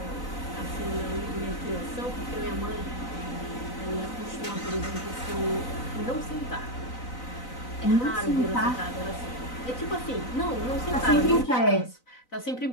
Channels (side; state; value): right; late; 4.0 ms